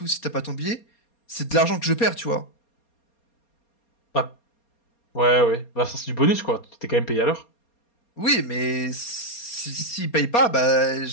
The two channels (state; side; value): late; right; 4.3 ms